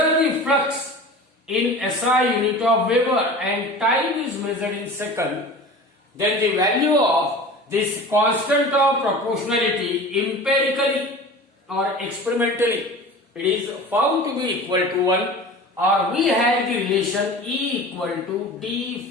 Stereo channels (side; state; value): both; normal; correlation 0.37